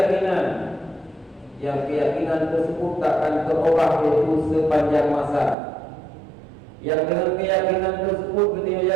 yang keyakinan tersebut takkan terubah yaitu sepanjang masa. Yang dengan keyakinan tersebut kita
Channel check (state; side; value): drops out; left; at 5.6 s